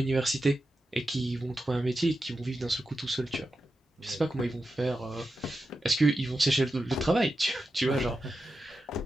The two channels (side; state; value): both; normal; correlation 0.90